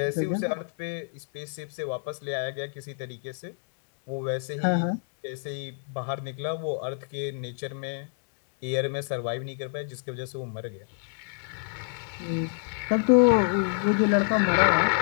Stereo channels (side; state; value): right; silent; digital silence